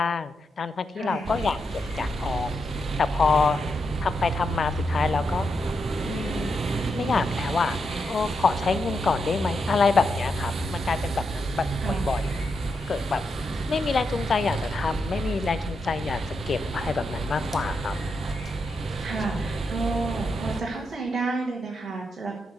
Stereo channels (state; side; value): normal; both; correlation 0.84